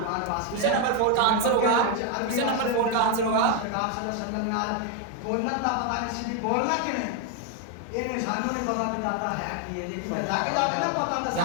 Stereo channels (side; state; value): both; different; correlation 0.01